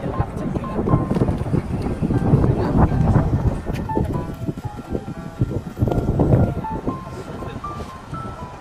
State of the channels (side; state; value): both; identical; correlation 1.00